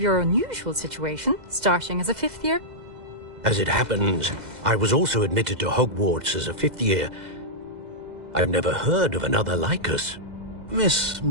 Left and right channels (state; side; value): late; left; 2.0 ms